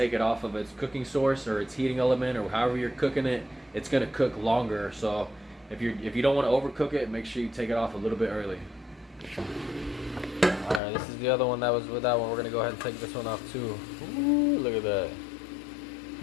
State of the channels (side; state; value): right; drops out; at 10.8 s